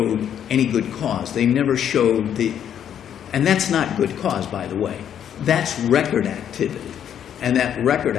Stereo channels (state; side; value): quieter; right; 9.4 dB